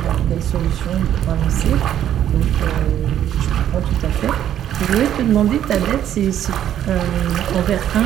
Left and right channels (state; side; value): quieter; left; 10.7 dB